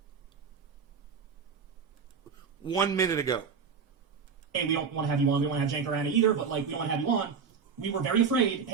1 minute ago. Hey, we don't want to have you on. We don't want to have Jank or Anna either, but, like, we don't want to have you on. We were very afraid,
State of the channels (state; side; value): quieter; left; 6.0 dB